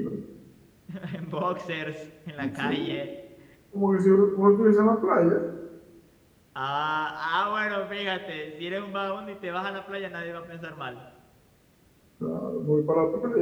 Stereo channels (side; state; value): both; identical; correlation 1.00